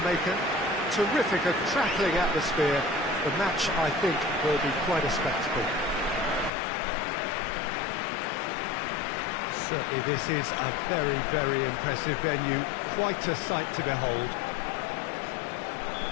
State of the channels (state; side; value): drops out; right; at 6.5 s